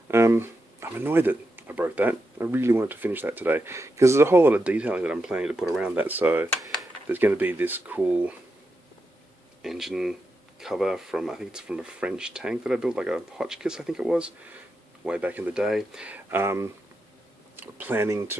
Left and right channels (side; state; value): both; normal; correlation 0.86